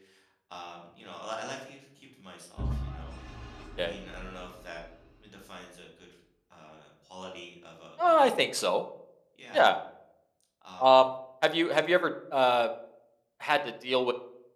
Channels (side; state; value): both; identical; correlation 1.00